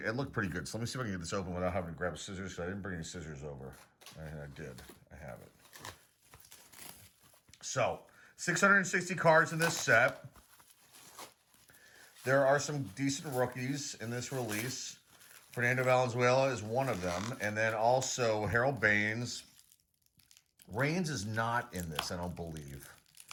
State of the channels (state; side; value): identical; both; correlation 1.00